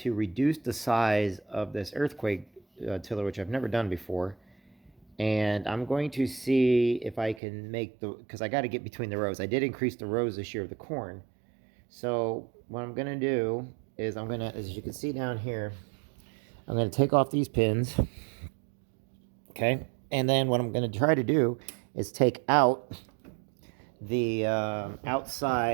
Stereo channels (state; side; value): drops out; left; at 7.4 s